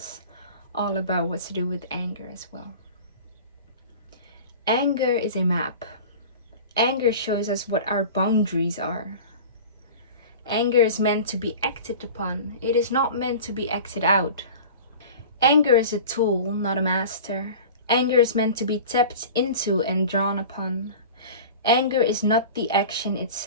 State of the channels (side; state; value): both; inverted; correlation -0.37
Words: all about what to do with anger as well. Anger is a map. Anger shows us what our boundaries are. Anger is meant to be acted upon. It is not meant to be acted out. Anger is a tool, not a master. Anger is meant to be tapped into and drawn upon. Anger is not the action